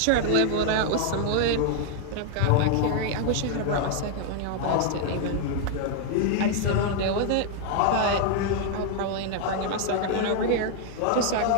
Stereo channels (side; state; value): both; different; correlation 0.00